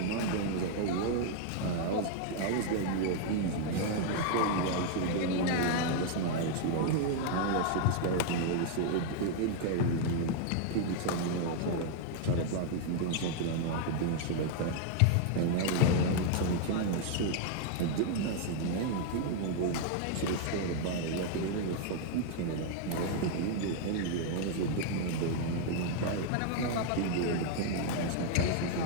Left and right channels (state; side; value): different; both; correlation 0.00